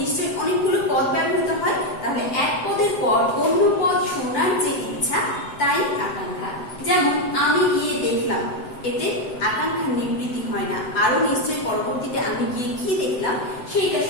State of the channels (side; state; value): right; late; 7.8 ms